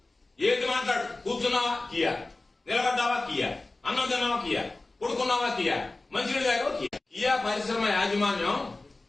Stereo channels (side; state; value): right; quieter; 3.1 dB